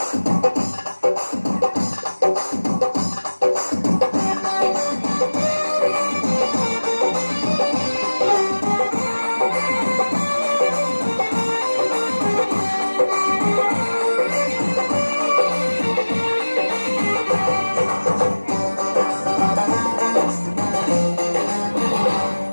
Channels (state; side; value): inverted; both; correlation -1.00